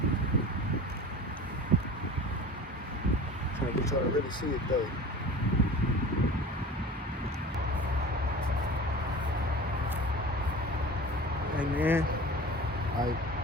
Trying to get y'all to really see it though. Hey man, like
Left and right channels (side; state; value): both; normal; correlation 0.38